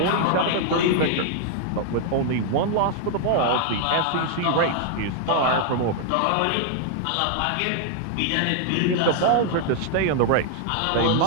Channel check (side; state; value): both; different; correlation 0.00